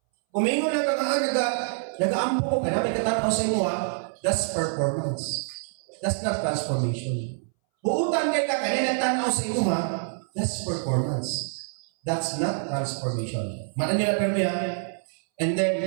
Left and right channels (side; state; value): left; silent; 61 dB below the other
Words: Kung may lang ka nag-aampo ko, kaya may katanaw sa imo, that's performance. That's not transformation. Buutan kay ka, kaya nagtanaw sa imo, that's performance. That's not transformation. Mana nila permi And then,